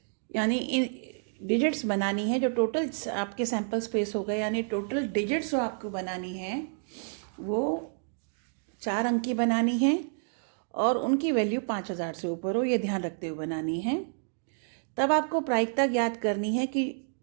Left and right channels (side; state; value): left; silent; digital silence